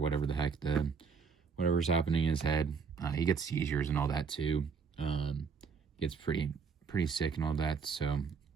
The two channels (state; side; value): quieter; left; 5.6 dB